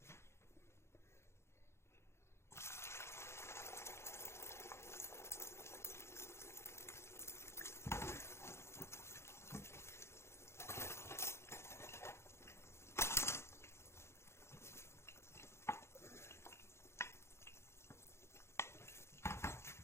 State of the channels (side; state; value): right; late; 0.13 ms